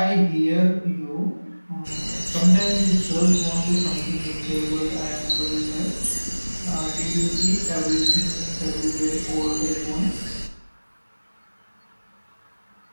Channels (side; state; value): both; inverted; correlation -1.00